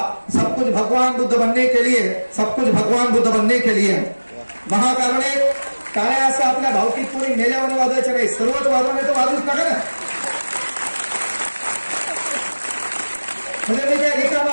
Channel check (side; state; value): both; inverted; correlation -1.00